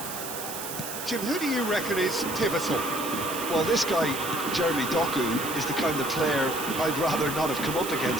Jim, who do you reckon is pivotal? Well, this guy, Jeremy Doku, is the kind of player I'd rather not have come up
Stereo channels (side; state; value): right; noise; hiss, 7 dB below the sound